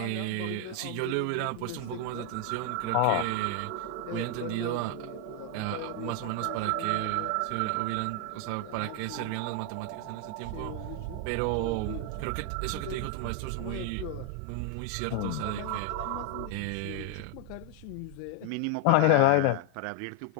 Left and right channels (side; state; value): both; different; correlation 0.00